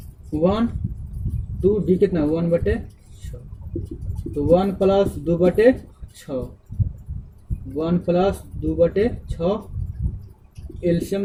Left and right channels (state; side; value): identical; both; correlation 1.00